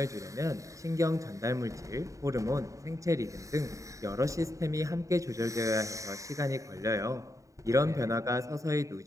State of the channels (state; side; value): late; left; 0.16 ms